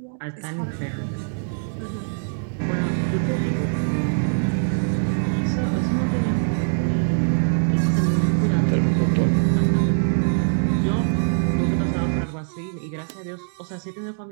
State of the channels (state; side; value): silent; left; digital silence